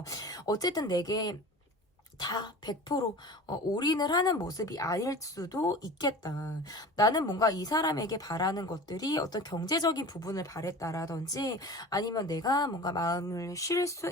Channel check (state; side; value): normal; both; correlation 0.37